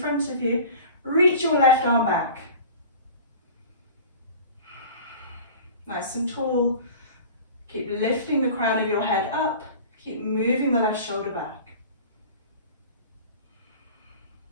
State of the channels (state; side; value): inverted; both; correlation -0.40